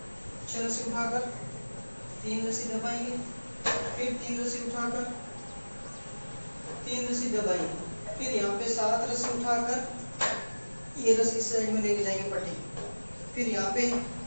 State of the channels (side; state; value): both; inverted; correlation -1.00